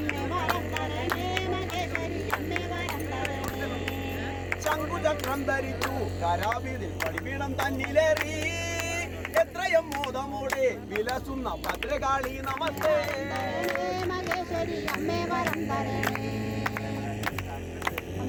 വരം തരണേ മഹേശ്വരി അമ്മേ വരം തരണേ. ശംഖുചക്രം ധരിച്ചു കരാവിതിൽ പടിപീഠം തന്നിലേറി എത്രയും മോദമോടെ വിലസുന്ന ഭദ്രകാളി നമസ്തേ. മഹേശ്വരി അമ്മേ വരം തരണേ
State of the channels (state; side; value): identical; both; correlation 1.00